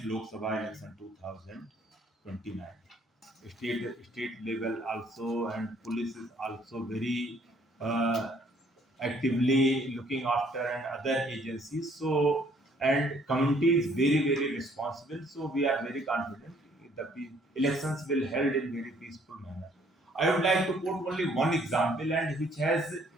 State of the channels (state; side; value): normal; both; correlation 0.62